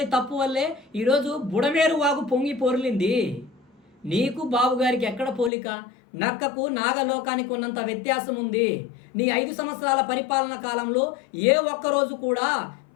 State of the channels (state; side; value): drops out; right; at 5.5 s